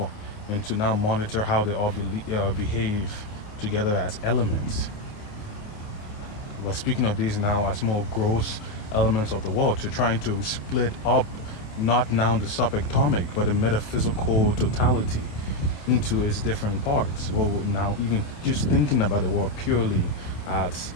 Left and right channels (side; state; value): right; late; 28 ms